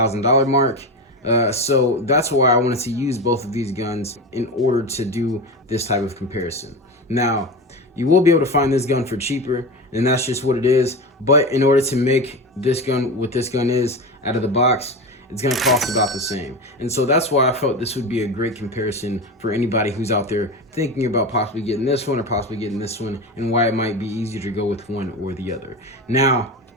mark. So that's why I wanted to use both of these guns in order to do this type of comparison. Now, you will be able to find this gun for cheaper, and that's just what it is. But in order to make this gun what this gun is out of the box, it's gonna cost about the same. And so that's why I felt this would be a great comparison for anybody who's out there thinking about possibly getting this one or possibly getting this one, and why it might be easier to go with one or the other. Now,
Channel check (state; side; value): normal; both; correlation 0.23